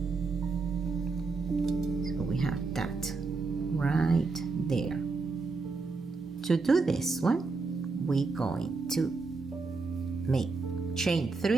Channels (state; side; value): quieter; left; 4.1 dB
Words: so we have that right there. To do this one, we're going to make chain